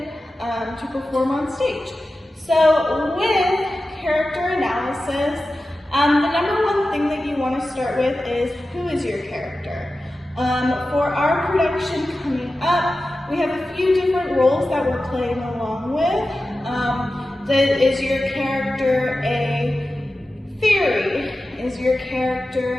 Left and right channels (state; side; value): normal; both; correlation 0.94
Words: to perform on stage. So with character analysis, the number one thing that you want to start with is, who is your character? For our production coming up, we have a few different roles that we're playing along with. Is your character a fairy? Is your